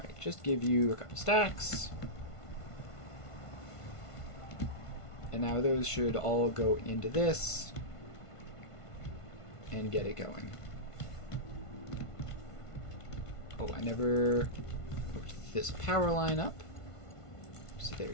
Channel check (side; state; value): right; late; 1.5 ms